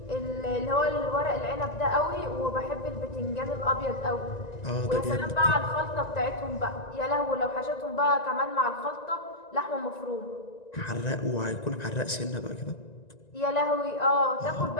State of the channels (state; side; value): late; right; 1.9 ms